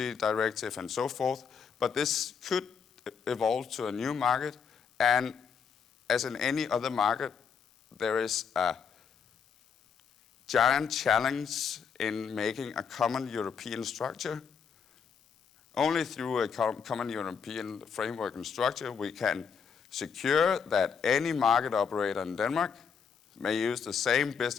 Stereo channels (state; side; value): quieter; right; 6.6 dB